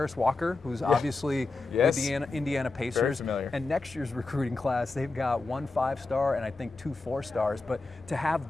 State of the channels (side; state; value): right; quieter; 3.5 dB